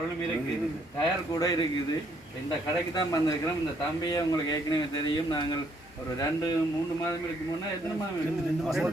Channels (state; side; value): normal; both; correlation 0.69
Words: இருக்குது, டயர் கூட இருக்குது. இந்த கடைக்கு தான் வந்திருக்கிறோம். இந்த தம்பியை உங்களுக்கு ஏற்கனவே தெரியும். நாங்கள் ஒரு 2-3 மாதம் இருக்கு முன்னே, எத்தனை மாதம்